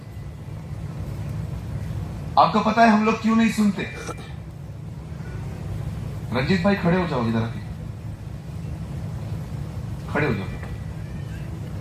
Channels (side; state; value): both; identical; correlation 1.00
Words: आपको पता है हम लोग क्यों नहीं सुनते? रंजीत भाई खड़े हो जाओ, इधर आके खड़े हो जाओ।